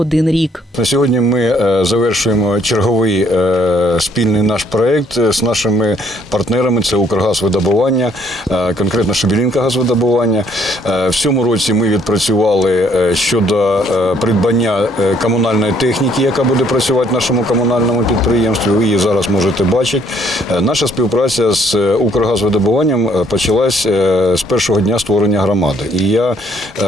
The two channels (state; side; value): normal; both; correlation 0.65